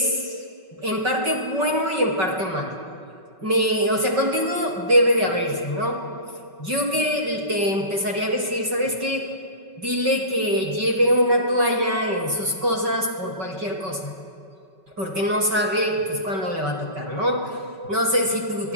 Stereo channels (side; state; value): left; late; 5.3 ms